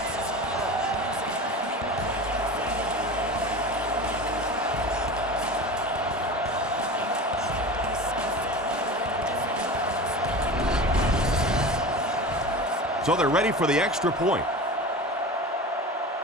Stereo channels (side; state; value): both; normal; correlation 0.32